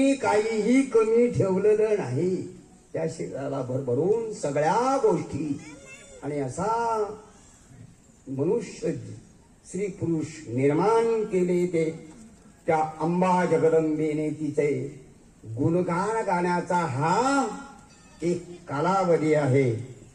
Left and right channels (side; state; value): both; identical; correlation 1.00